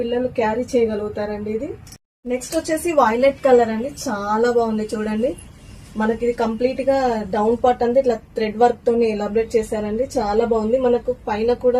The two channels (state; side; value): identical; both; correlation 1.00